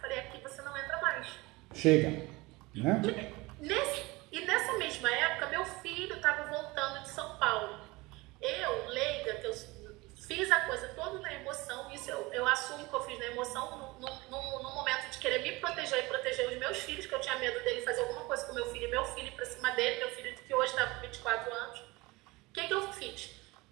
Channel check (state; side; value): quieter; left; 22.6 dB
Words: Falei, aqui você não entra mais. Chega, né? E nessa mesma época, meu filho estava voltando de São Paulo. Eu, leiga, que eu fiz a coisa toda na emoção, isso eu assumo que eu fiz na emoção, no momento de querer me proteger e proteger os meus filhos, que eu tinha medo dele fazer alguma coisa com meu filho ir pra cima dele, meu filho que hoje está com 24 anos. O que eu fiz?